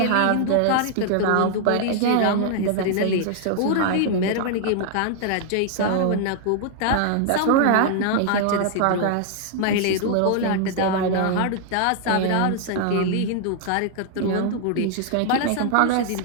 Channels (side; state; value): both; different; correlation 0.00